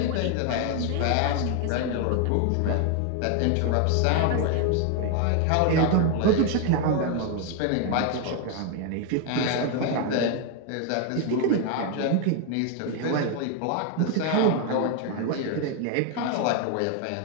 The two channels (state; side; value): different; both; correlation 0.01